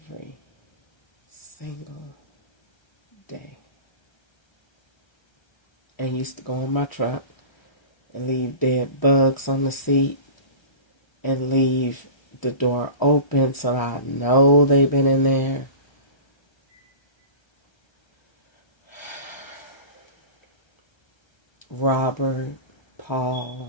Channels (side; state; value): right; late; 1.3 ms